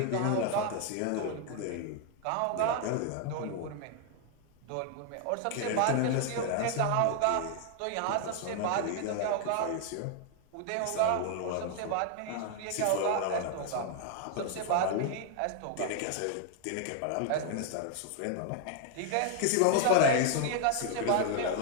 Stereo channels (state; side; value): different; both; correlation 0.00